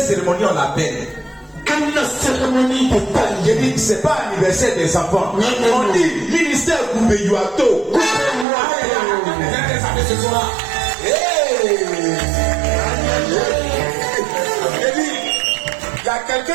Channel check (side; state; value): left; drops out; at 8.5 s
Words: cérémonie on l'appelle? Une cérémonie de taille. J'ai dit que ce n'est pas anniversaire des enfants. Non. On dit ministère Koubeyuato. Il y a